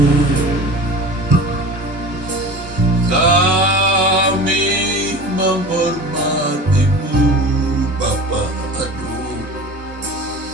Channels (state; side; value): normal; both; correlation 0.36